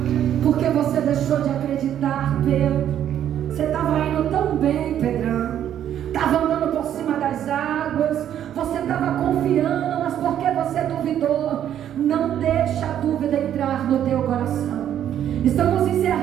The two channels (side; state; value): left; quieter; 10.4 dB